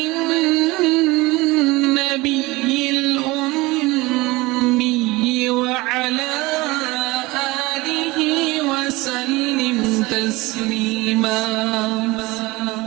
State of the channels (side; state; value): left; quieter; 21.7 dB